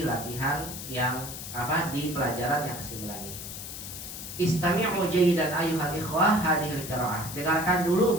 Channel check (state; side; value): noise; left; hiss, 9 dB below the sound